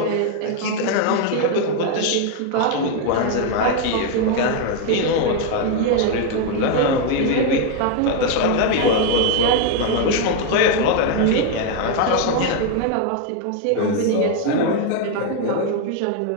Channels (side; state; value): both; different; correlation 0.01